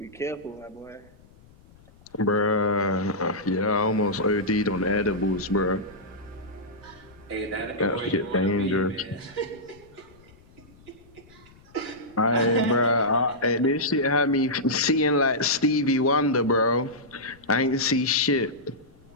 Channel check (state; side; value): noise; left; rumble, 27 dB below the sound